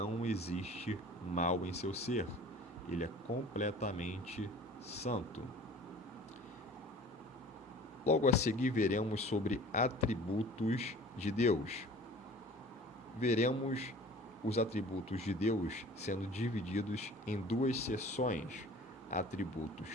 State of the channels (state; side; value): normal; both; correlation 0.45